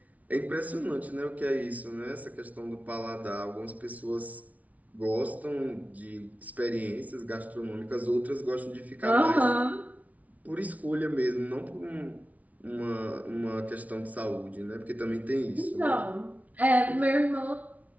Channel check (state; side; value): late; left; 0.071 ms